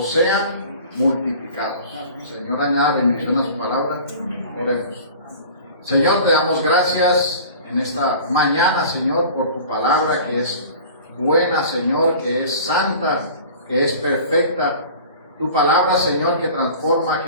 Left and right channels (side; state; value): both; inverted; correlation -0.41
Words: sean multiplicados. Señor, añada bendición a su palabra. Oremos. Señor, te damos gracias en esta mañana, Señor, por tu palabra que es buena, Señor, que es santa, que es perfecta. Tu palabra, Señor, que transforma,